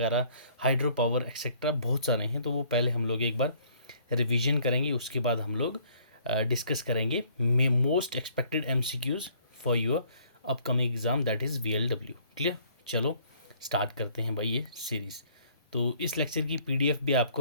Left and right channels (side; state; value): both; inverted; correlation -0.60